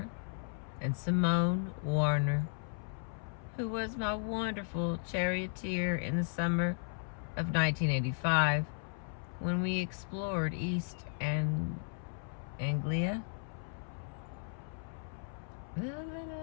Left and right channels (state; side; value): silent; right; 54 dB below the other